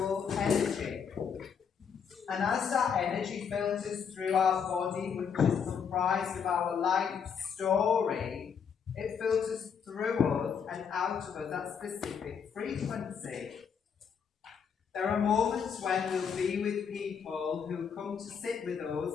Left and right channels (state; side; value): quieter; right; 6.9 dB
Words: energy. And as that energy filters through our body, which is comprised of our life story, it filters through us and out of us at specific frequency. There are moments when we'll be with people who come to sit with us